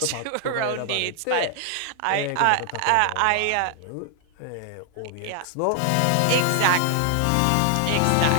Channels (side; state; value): both; different; correlation 0.00